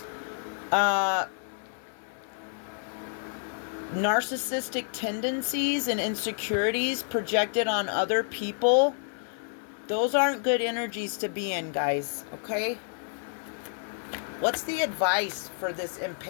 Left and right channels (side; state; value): right; silent; digital silence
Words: narcissistic tendencies and insecurities projected on other people. Those aren't good energies to be in, guys. Okay? What's the advice for this